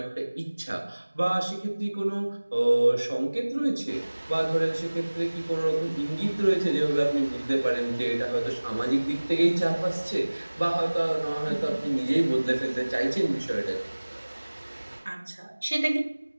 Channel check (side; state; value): both; inverted; correlation -1.00